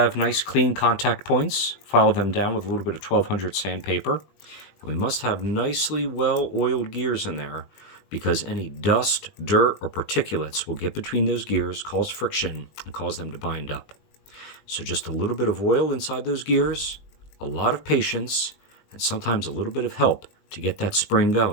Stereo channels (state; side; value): late; right; 20 ms